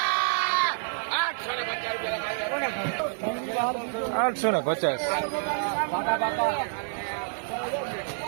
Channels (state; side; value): silent; left; 59 dB below the other